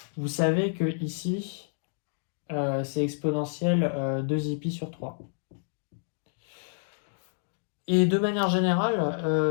vous savez que ici, c'est exponentielle 2 pi sur 3. Et de manière générale,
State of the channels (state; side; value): silent; right; digital silence